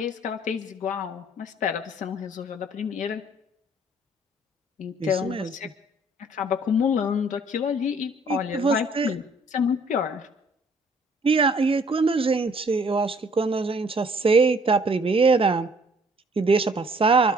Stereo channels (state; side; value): normal; both; correlation 0.59